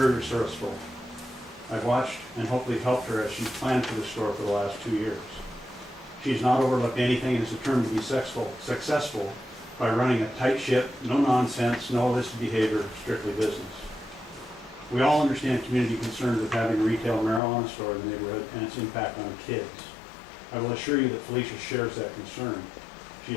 resourceful. I've watched and hopefully helped her as she's planned for the store for the last 2 years. She's not overlooked anything and is determined to be successful by running a tight ship, no nonsense, no illicit behavior, strictly business. We all understand community concerns with having a retail marijuana store in the neighborhood and its impact on kids. I will assure you that Felicia shares that concern. She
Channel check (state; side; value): drops out; right; at 17.4 s